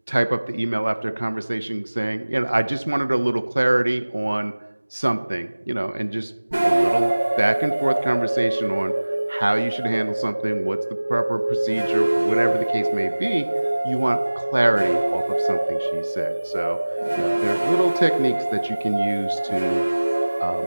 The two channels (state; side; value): inverted; both; correlation -1.00